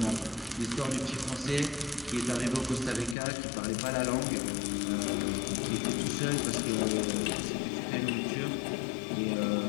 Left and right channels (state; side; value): drops out; right; at 3.2 s